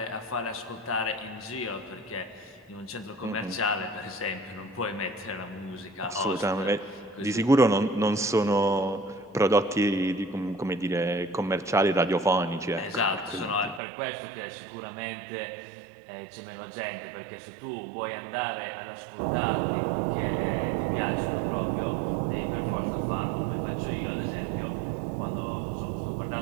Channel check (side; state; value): left; drops out; at 13.8 s